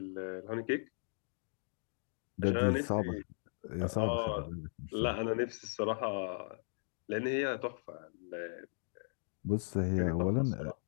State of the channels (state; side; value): silent; right; digital silence